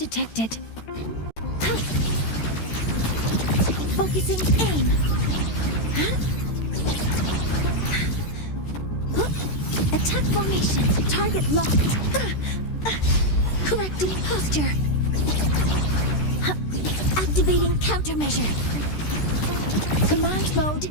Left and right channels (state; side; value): late; right; 13 ms